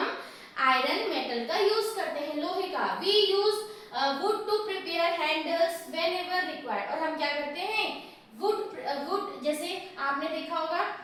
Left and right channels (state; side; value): identical; both; correlation 1.00